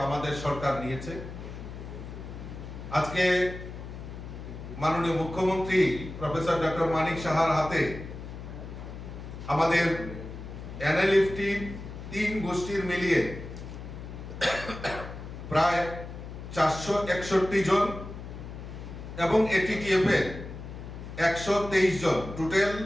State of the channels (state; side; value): noise; left; hum, 10 dB below the sound